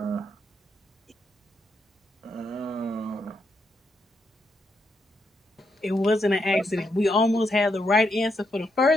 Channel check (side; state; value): both; normal; correlation 0.80